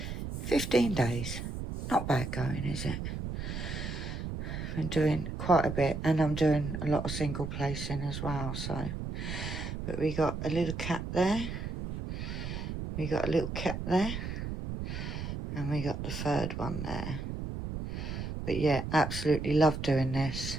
15 days. Not bad going, is it? Been doing quite a bit, and I'm doing a lot of single placing as well, so. But we got a little cat there. We got a little cat there. And we got the third one there. But yeah, absolutely love doing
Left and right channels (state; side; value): noise; right; rumble, 5 dB below the sound